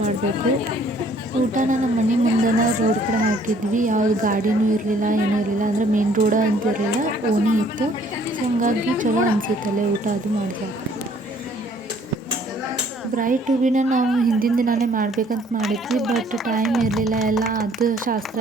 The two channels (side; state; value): both; normal; correlation 0.60